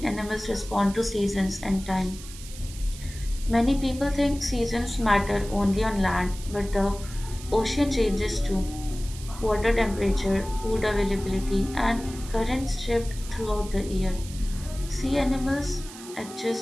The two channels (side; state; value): right; noise; hiss, 15 dB below the sound